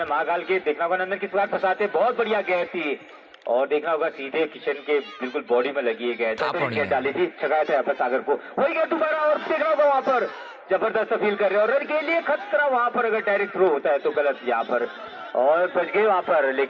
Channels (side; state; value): both; identical; correlation 1.00